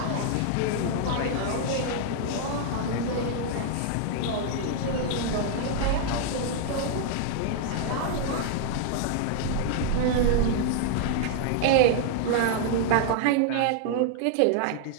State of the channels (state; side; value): different; both; correlation -0.01